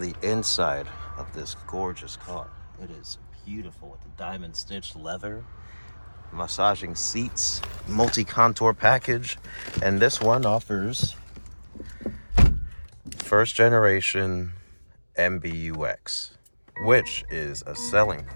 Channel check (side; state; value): both; inverted; correlation -1.00